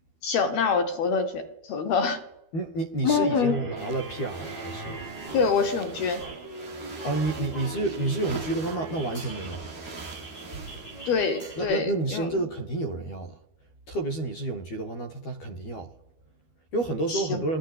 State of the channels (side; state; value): right; late; 13 ms